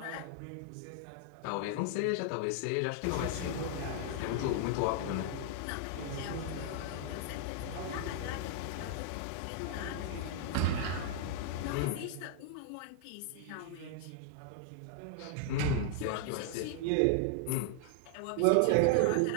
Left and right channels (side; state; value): both; different; correlation -0.01